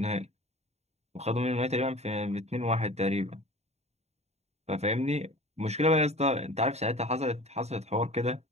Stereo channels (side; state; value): left; late; 0.31 ms